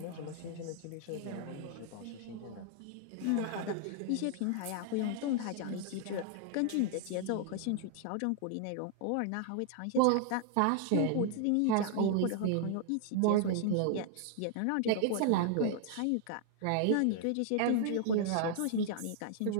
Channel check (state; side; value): different; both; correlation 0.00